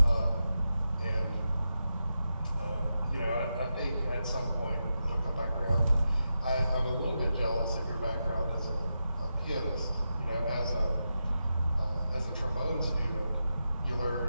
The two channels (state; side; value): inverted; both; correlation -0.88